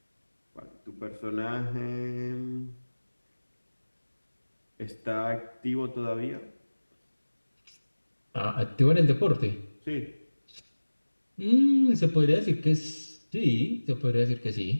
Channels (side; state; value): both; inverted; correlation -1.00